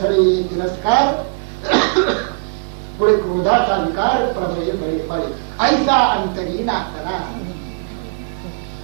ये तिरस्कार, पुढे क्रोधाचा विकार, प्रभय बळे बळे. ऐसा अंतरी नासना.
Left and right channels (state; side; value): silent; left; digital silence